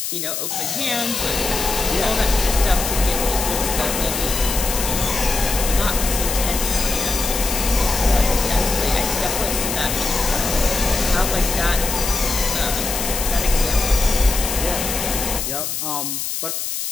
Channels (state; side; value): noise; left; hiss, 3 dB below the sound